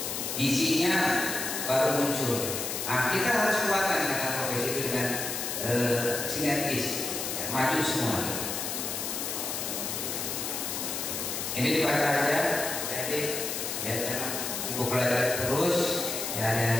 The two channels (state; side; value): noise; left; hiss, 3 dB below the sound